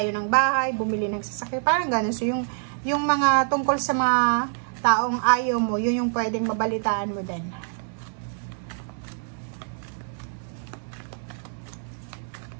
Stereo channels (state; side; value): silent; left; digital silence